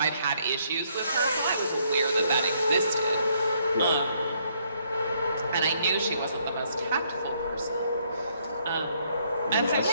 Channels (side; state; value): both; inverted; correlation -0.70